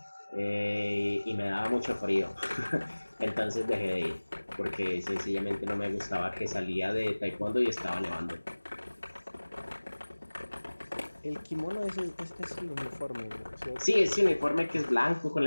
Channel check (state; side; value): inverted; both; correlation -1.00